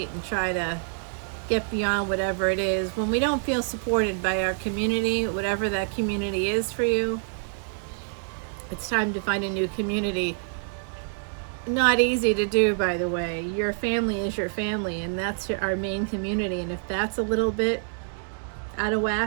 and try to get beyond whatever it is. When we don't feel supported by our community, whatever that community is for you, it's time to find a new community. Not easy to do, by the way. Your family is your family, and that's our main community. And if that's a little bit out of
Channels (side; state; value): left; silent; digital silence